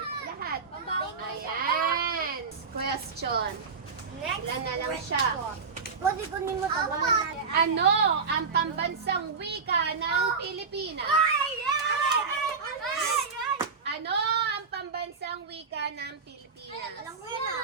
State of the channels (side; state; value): left; quieter; 5.1 dB